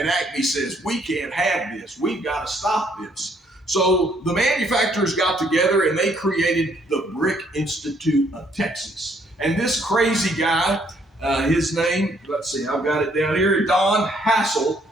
Acme says, we can't have this. We've got to stop this. So the manufacturers got together and they created the Brick Institute of Texas. And this crazy guy, his name, let's see, I've got it down here, Don Hassel,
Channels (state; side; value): normal; both; correlation 0.67